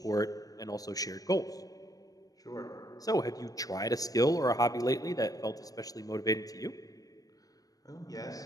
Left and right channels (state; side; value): late; right; 0.18 ms